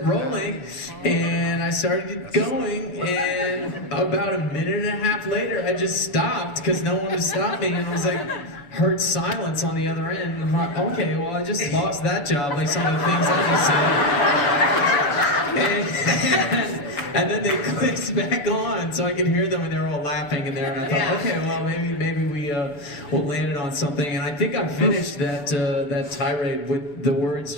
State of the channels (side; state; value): right; late; 7.0 ms